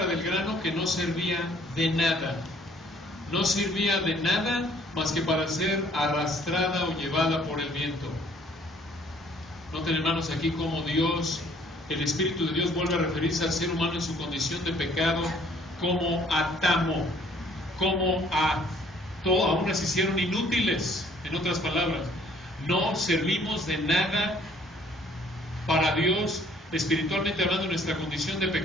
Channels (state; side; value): normal; both; correlation 0.59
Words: del grano que no servía de nada. No servía de nada más que para ser arrastrada o llevada por el viento. Noten, hermanos, aquí como Dios, el Espíritu de Dios, vuelve a referirse al ser humano en su condición de pecado como a tamo, como a todo, aún las hicieron inútiles. En otras palabras, no servimos de nada para Dios, espiritualmente hablando, en nuestra condición de